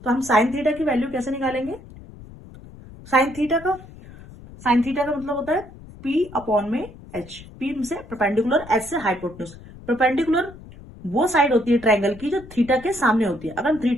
तो हम साइन थीटा की वैल्यू कैसे निकालेंगे? साइन थीटा का मतलब होता है P अपॉन में H। P से परपेंडिकुलर, H से हाइपोटेन्यूज। परपेंडिकुलर वो साइड होती है ट्रायंगल की जो थीटा के सामने होती है। अगर हम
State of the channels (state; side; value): noise; left; rumble, 18 dB below the sound